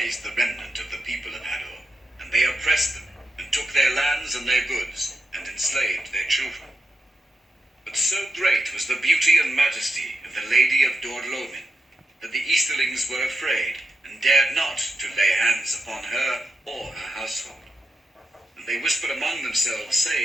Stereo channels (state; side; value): normal; both; correlation 0.87